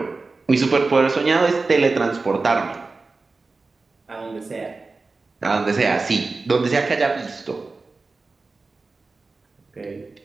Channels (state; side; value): quieter; left; 3.8 dB